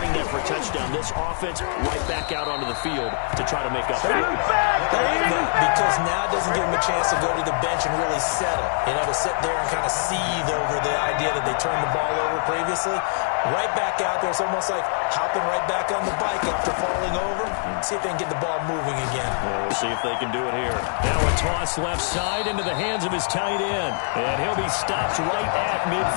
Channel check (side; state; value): right; silent; 56 dB below the other